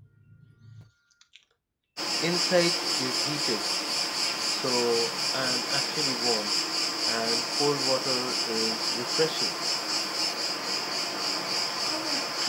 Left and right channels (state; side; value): identical; both; correlation 1.00